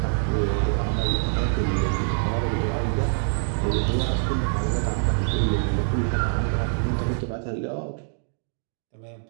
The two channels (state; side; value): silent; left; digital silence